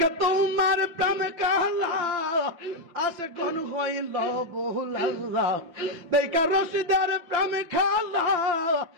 তোমার প্রেম কালা আসে কোন হইল বহুলা দেখা রশিদের প্রেম খালা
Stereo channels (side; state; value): left; late; 5.8 ms